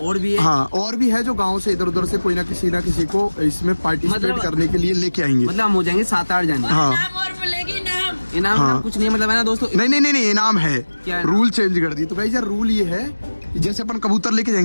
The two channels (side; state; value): both; inverted; correlation -1.00